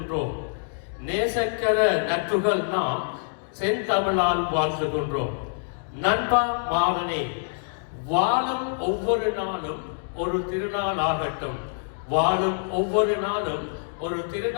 நேசக்கர நட்புகள் நாம், செந்தமிழால் வாழ்த்துகின்றோம். நண்பா மாறனே, வாழும் ஒவ்வொரு நாளும் ஒரு திருநாள் ஆகட்டும். வாழும் ஒவ்வொரு நாளும் ஒரு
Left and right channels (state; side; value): silent; right; digital silence